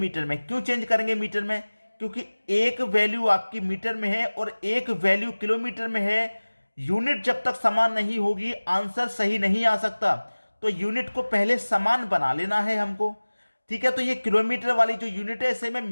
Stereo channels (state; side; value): inverted; both; correlation -1.00